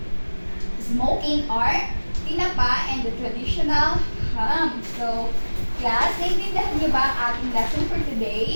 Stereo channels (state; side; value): inverted; both; correlation -1.00